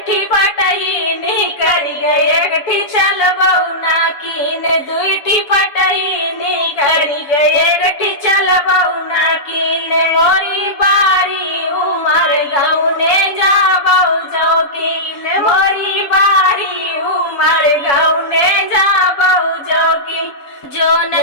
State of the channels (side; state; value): right; late; 7.1 ms